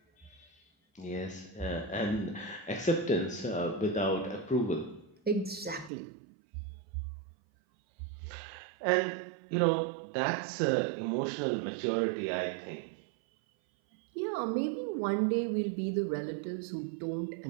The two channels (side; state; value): left; drops out; at 5.9 s